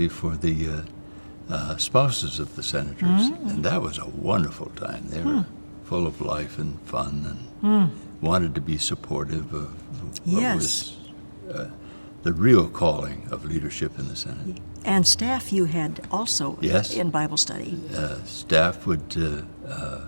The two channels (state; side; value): inverted; both; correlation -1.00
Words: for the spouses of the senators, and that was a wonderful time. They were full of life and fun, and wanted to be supportive of what was the real calling of leadership in the Senate. And staff you had also in Bible study. Staff would